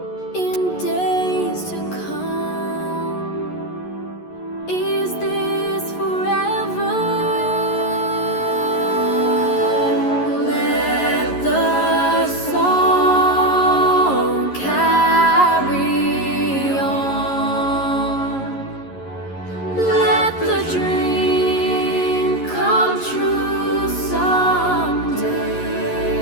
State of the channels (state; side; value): late; right; 11 ms